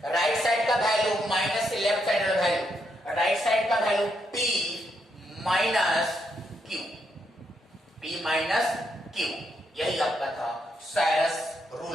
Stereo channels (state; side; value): normal; both; correlation 0.78